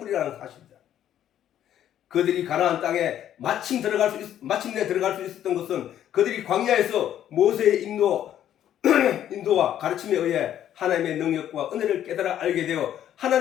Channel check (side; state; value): right; quieter; 10.9 dB